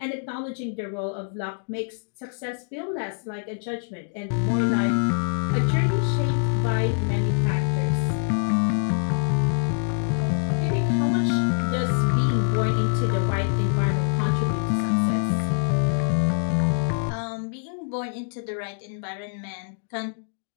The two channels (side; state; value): right; silent; digital silence